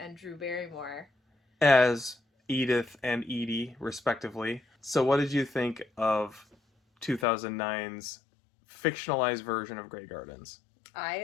Drew Barrymore as Edith and Edie, respectively. So what did you think of 2009's fictionalized version of Grey Gardens?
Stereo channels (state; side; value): drops out; right; at 7.2 s